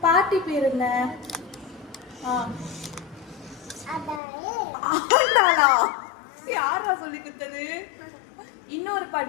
பாட்டி பேர் என்ன? ஆண்டாளா? யாரா சொல்லி கொடுத்தது? இன்னொரு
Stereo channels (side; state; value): right; drops out; at 4.2 s